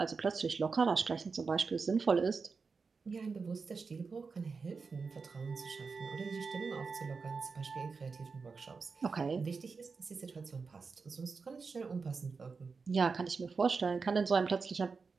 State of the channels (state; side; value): quieter; left; 4.8 dB